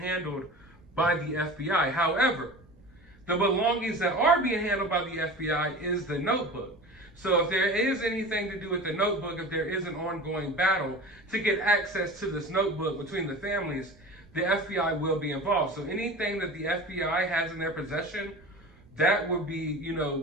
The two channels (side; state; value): right; noise; rumble, 26 dB below the sound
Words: by the FBI. However, the belongings that are being handled by the FBI is the notebook. So if there is anything to do with the notebook, if there is an ongoing battle to get access to this notebook between the families, the FBI will be involved. So anything that the FBI has in their possession, that would be,